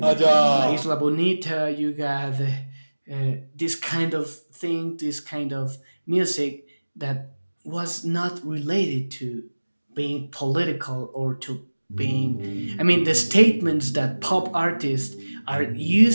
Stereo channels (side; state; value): both; inverted; correlation -1.00